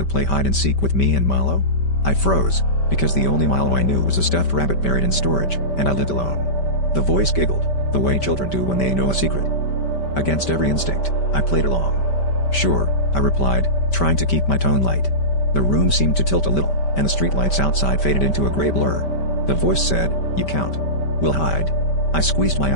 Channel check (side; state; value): right; late; 5.1 ms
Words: play hide and seek with me and Milo?" I froze, because the only Milo I knew was a stuffed rabbit buried in storage, and I lived alone. The voice giggled, the way children do when they know a secret. Against every instinct, I played along. "Sure," I replied, trying to keep my tone light. The room seemed to tilt a little, and the streetlights outside faded into a gray blur. The voice said, "You count. We'll hide." I squeezed my